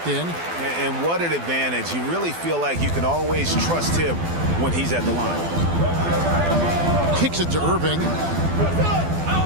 in. And what an advantage. You really feel like you can always trust him when he's at the line. Kicks it to Irving.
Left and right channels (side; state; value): left; late; 12 ms